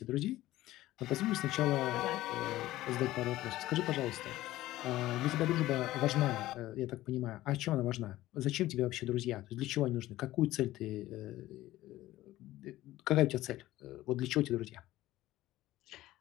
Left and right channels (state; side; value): quieter; right; 16.0 dB